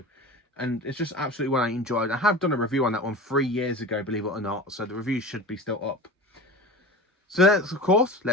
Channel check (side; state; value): both; normal; correlation 0.33